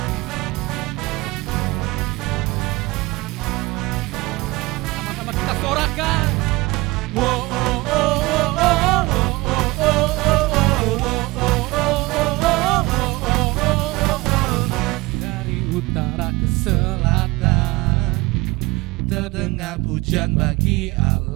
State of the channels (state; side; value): quieter; left; 22.8 dB